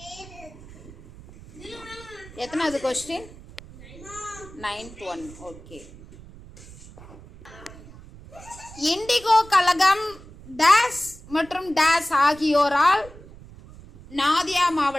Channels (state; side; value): noise; right; rumble, 19 dB below the sound